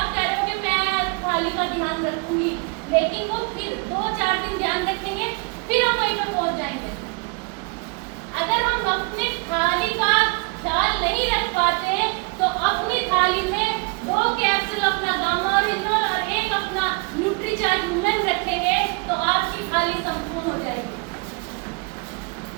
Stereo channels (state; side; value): quieter; left; 31.8 dB